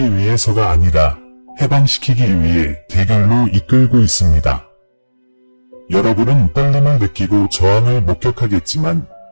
위해서가 아니라 해방시키기 위해 대결로 이끌고 있습니다. 여러분은 떨림을 느끼고 저항을 목격하겠지만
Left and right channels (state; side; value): inverted; both; correlation -1.00